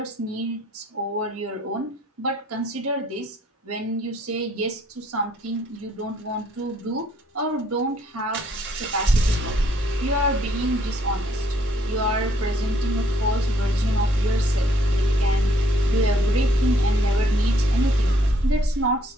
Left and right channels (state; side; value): normal; both; correlation 0.66